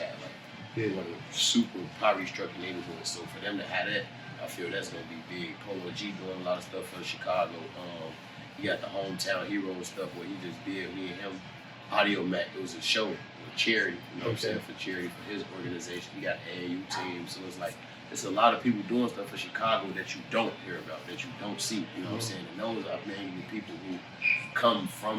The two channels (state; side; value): identical; both; correlation 1.00